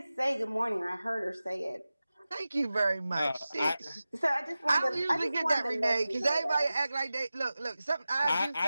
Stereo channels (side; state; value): both; inverted; correlation -0.95